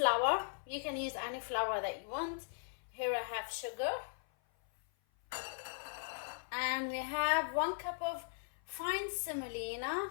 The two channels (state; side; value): silent; right; 52 dB below the other